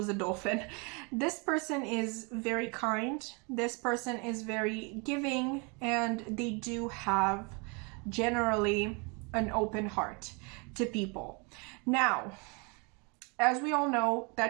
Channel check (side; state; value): left; quieter; 31.9 dB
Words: a dolphin. This person is very kind. This person is very giving, and they do have generally an open heart to people. Now, as we all know,